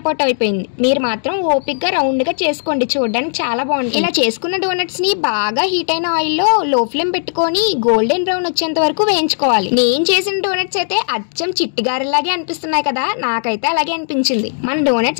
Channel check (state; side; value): silent; right; digital silence